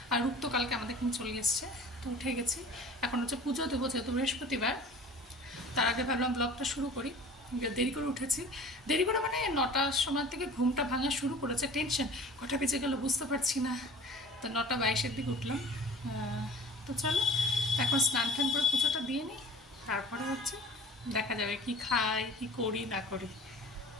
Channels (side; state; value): both; normal; correlation 0.43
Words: আর রূপ তো কালকে আমাদের এখানে চলে এসছে, তো উঠে গেছি। এখন হচ্ছে পুজো দেবো, যেহেতু বৃহস্পতিবার। তার আগে ভাবলাম ব্লগটা শুরু করি। দেরি করে উঠেছি, দেরি করে মানে 9টার সময় থেকে ঘুমটা ভাঙা শুরু করেছে। টেনশন, কটা বেজে গেল বুঝতে পারছি না। তো 9:22-এর দিকে উঠলাম। তো চলো এখন স্নান টান করে পুজোটা দিয়ে নিই, তারপরে হচ্ছে দেখা যাবে কি খাই কি করি না করি।